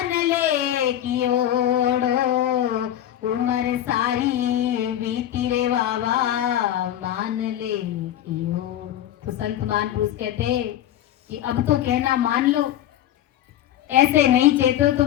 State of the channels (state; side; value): quieter; right; 11.9 dB